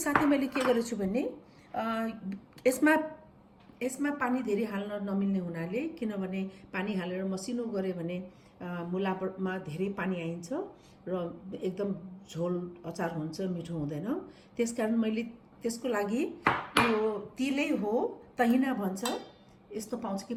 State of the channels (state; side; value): identical; both; correlation 1.00